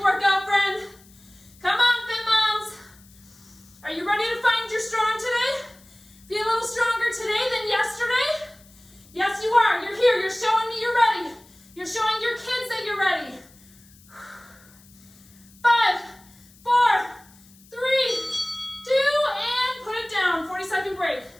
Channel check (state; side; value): noise; left; hiss, 26 dB below the sound